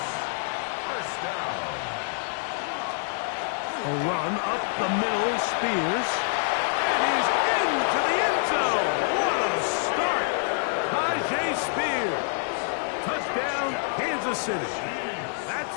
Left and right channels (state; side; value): silent; right; 60 dB below the other